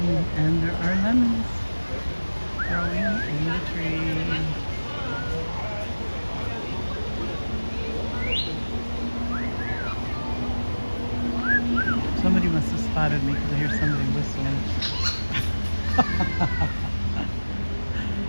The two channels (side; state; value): both; inverted; correlation -1.00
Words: and there are lemons growing in the tree. Somebody must have spotted me because I hear somebody whistling.